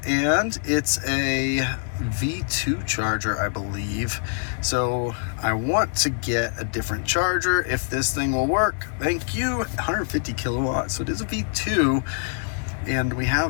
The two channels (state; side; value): silent; right; digital silence